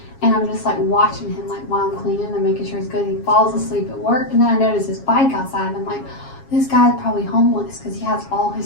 And I'm just like watching him, like while I'm cleaning and making sure he's good. He falls asleep at work, and then I notice his bike outside, and I'm like, this guy's probably homeless because he has all his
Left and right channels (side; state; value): right; late; 7.3 ms